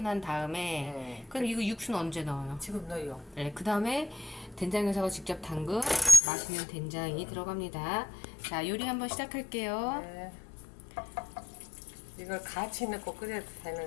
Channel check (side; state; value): right; drops out; at 6.2 s